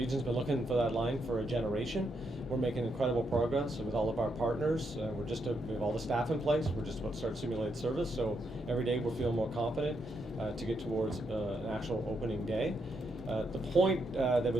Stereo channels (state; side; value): normal; both; correlation 0.79